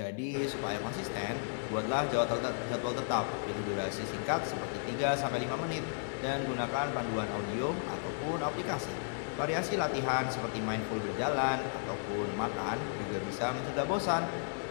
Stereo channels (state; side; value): silent; right; digital silence